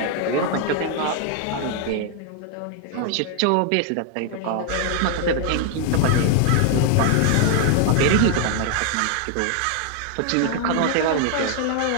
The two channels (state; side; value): different; both; correlation 0.00